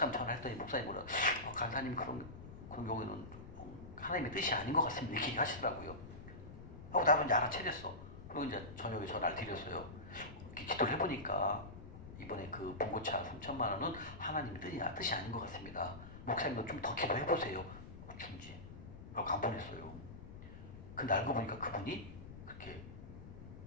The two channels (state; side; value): noise; left; rumble, 13 dB below the sound